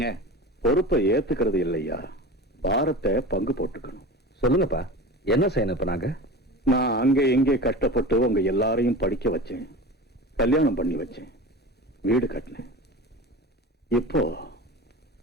பொறுப்பை ஏத்துக்கிறது இல்லையா, பாரத்தை பங்கு போட்டுக்கணும். சொல்லுங்கப்பா, என்ன செய்யணும் இப்ப நாங்க? நான் அங்க எங்கே கஷ்டப்பட்டு உங்க எல்லாரையும் படிக்க வச்சேன், கல்யாணம் பண்ணி வச்சேன், வீடு கட்டினேன். இப்போ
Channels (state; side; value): normal; both; correlation 0.32